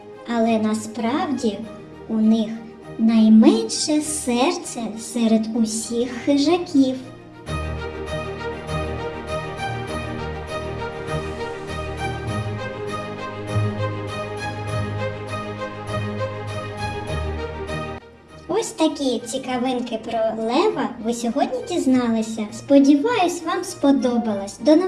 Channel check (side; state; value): both; identical; correlation 1.00